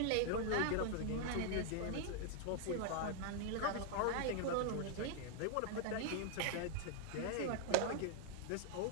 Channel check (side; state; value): both; different; correlation 0.00